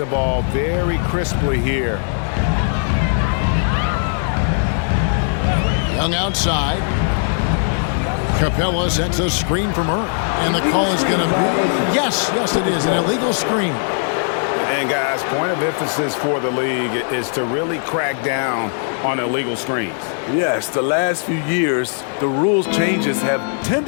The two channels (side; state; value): right; silent; 67 dB below the other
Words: ball very crisply here. Young outside. Capella sets a screen from her. And the call is going to be, yes, it is, an illegal screen. And guys, point of emphasis for the league is to really crack down on illegal screens. Yes, the last few years, the rules changes have